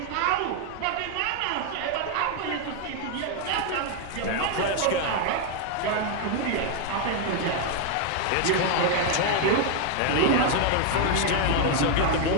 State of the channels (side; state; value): both; different; correlation 0.01